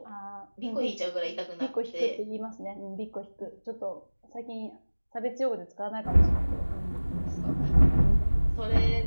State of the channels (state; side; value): inverted; both; correlation -1.00